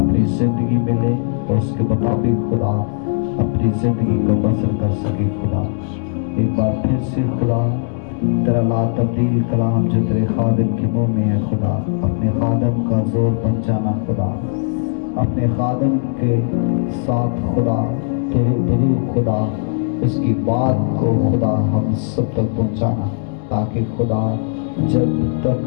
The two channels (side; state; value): right; silent; digital silence